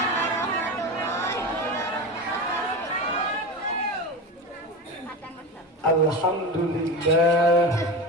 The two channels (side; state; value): both; normal; correlation 0.24